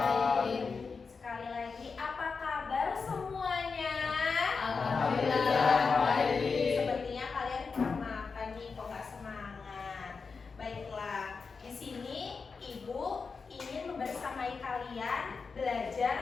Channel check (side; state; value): right; quieter; 4.9 dB